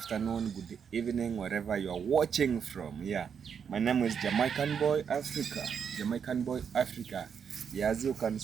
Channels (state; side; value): quieter; left; 7.1 dB